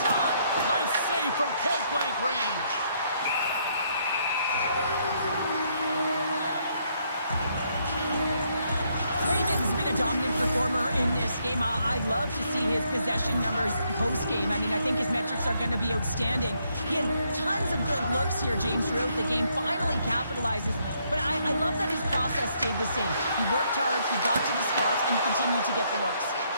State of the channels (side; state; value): both; inverted; correlation -0.73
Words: shot. Nice save from point-blank range. Kraken's been a dominant performer in this game. I'd love to see his possession numbers post-game. I mean, I think his metrics are going to be outstanding. He had tons of good looks here, James, throughout the game. Finally capitalizes. But I love that his process stayed the same. He worked hard, he got to the spots, and he continued to get the looks.